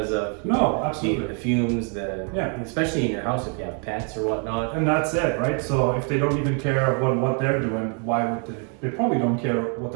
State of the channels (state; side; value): quieter; left; 39.2 dB